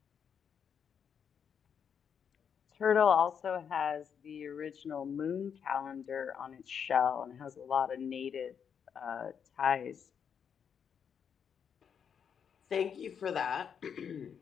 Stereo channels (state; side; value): quieter; right; 7.4 dB